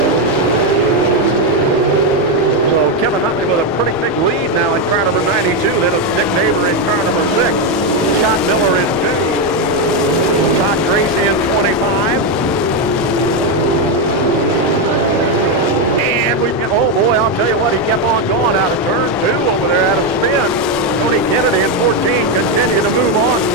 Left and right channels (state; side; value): normal; both; correlation 0.06